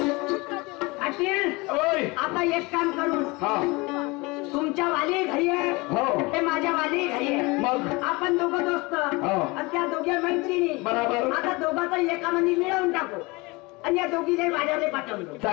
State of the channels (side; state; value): right; quieter; 24.9 dB